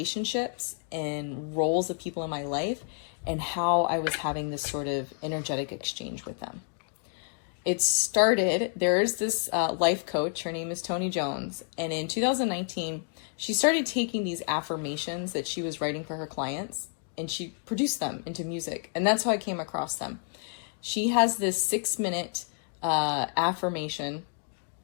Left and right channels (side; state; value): right; silent; 58 dB below the other